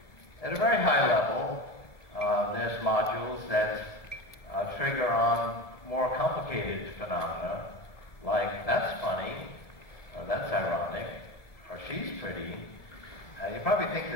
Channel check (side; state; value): right; late; 1.6 ms